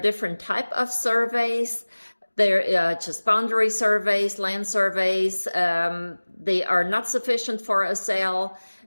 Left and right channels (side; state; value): both; inverted; correlation -1.00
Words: type of surveys. They're just boundary surveys, land surveys. They are not sufficient for a sale.